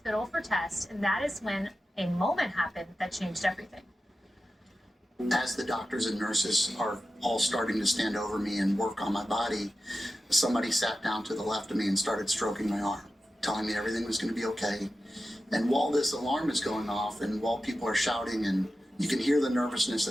for tests, and that is when a moment happened that changed everything. As the doctors and nurses are all starting to stand over me and work on my body, somebody sat down to the left of me and started stroking my arm, telling me everything was going to be okay. And while this alarm is going off and while people are shouting and you can hear the nervousness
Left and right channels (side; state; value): both; normal; correlation 0.92